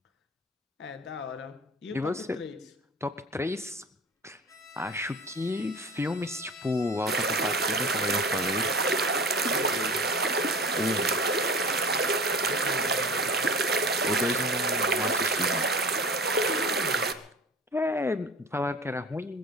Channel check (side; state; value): both; normal; correlation 0.38